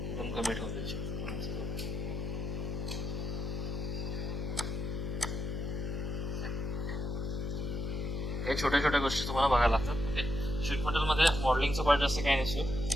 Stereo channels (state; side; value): noise; left; hum, 4 dB below the sound